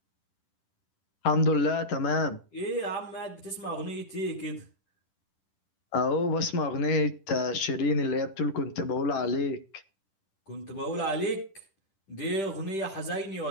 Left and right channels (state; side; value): late; right; 10 ms